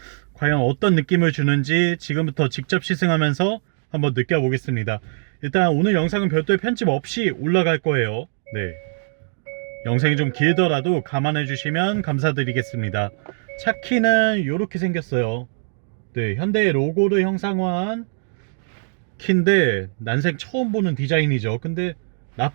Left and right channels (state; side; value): silent; left; 61 dB below the other